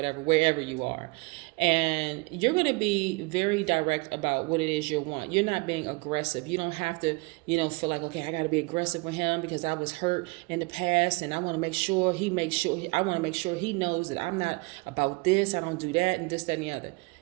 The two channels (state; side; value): quieter; left; 27.0 dB